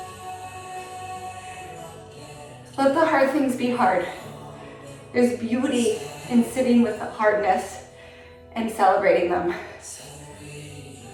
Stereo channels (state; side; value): identical; both; correlation 1.00